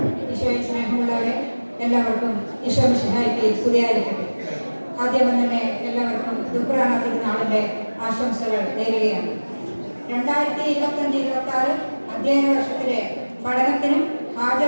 ഈശോയിൽ സ്നേഹമുള്ളവരെ, എല്ലാവർക്കും ഈശോ മിശിഹായ്ക്ക് സ്തുതിയായിരിക്കട്ടെ. ആദ്യം തന്നെ എല്ലാവർക്കും ദുഃഖറാന തിരുനാളിൻ്റെ ആശംസകൾ നേരുകയാണ്. 2025-26 അധ്യയന വർഷത്തിലെ പഠനത്തിനും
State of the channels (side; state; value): both; inverted; correlation -1.00